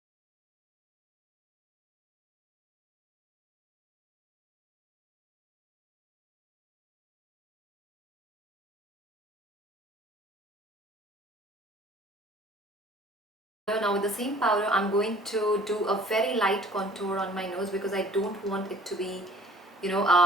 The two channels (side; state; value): both; normal; correlation 0.51